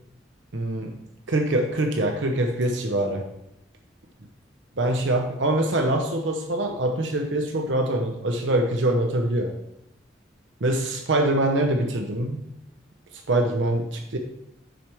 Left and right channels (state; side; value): normal; both; correlation 0.33